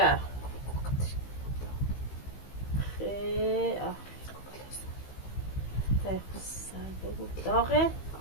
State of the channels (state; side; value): late; right; 15 ms